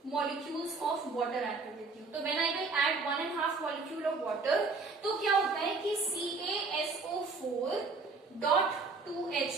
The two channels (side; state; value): left; quieter; 4.1 dB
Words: मॉलिक्यूल्स ऑफ वाटर ऐड कर देती हूँ। तो when I will add 1.5 molecule of water, तो क्या होता है कि CaSO4 डॉट